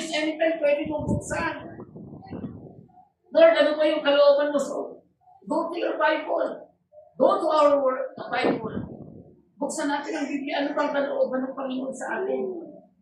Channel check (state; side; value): identical; both; correlation 1.00